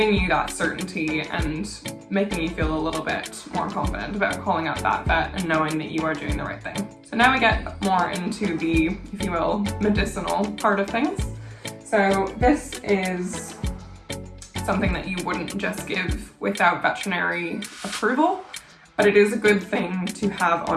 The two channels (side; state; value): both; identical; correlation 1.00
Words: you that certainty and making you feel a little bit more confident about calling up that vet and knowing that you are doing the right thing. So now we get more into the, if you will, medicinal part of things. So this is something that you wouldn't just give without veterinary approval, but it is a good thing to have